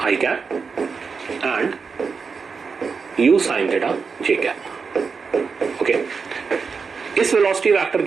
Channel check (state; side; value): quieter; left; 5.2 dB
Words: i cap and u sin theta j cap. Okay, इस वेलोसिटी वेक्टर